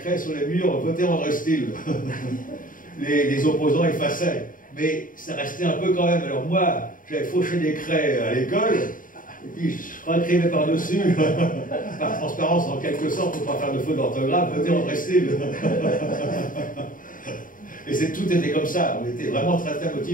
sur les murs, votez André Steele. Les opposants effaçaient. Mais ça restait un peu quand même. Alors moi, j'avais fauché des craies à l'école, et puis je réécrivais par-dessus, par transparence en quelque sorte, pour ne pas faire de faute d'orthographe, votez André Steele. Et tout était comme ça, on était vraiment très très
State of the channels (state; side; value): late; right; 0.39 ms